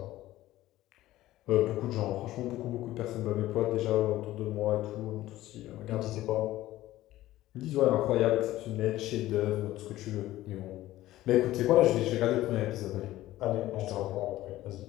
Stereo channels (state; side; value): quieter; right; 15.5 dB